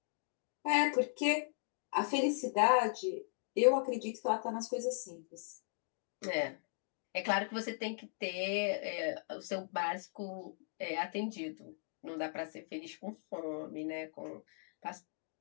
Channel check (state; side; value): silent; right; digital silence